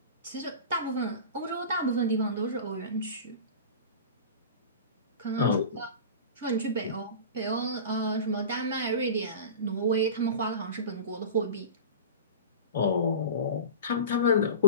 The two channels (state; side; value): inverted; both; correlation -0.32